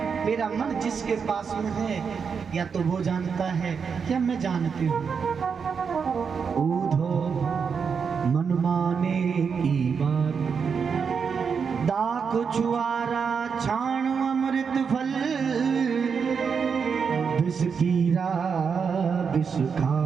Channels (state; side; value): quieter; left; 6.1 dB